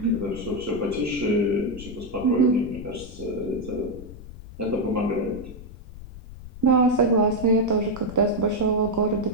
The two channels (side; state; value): left; noise; rumble, 15 dB below the sound